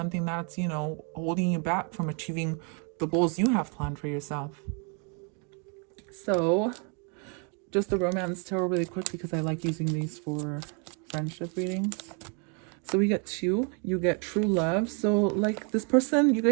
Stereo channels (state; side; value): quieter; left; 37.7 dB